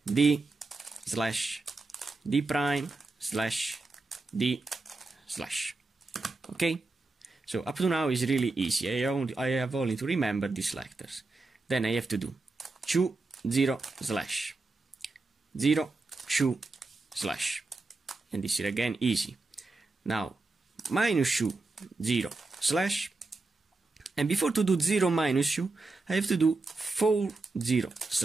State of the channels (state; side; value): quieter; left; 3.4 dB